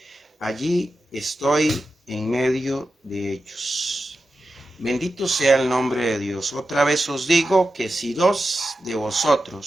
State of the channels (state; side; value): normal; both; correlation 0.91